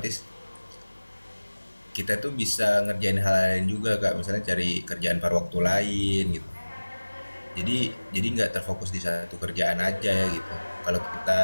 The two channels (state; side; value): inverted; both; correlation -1.00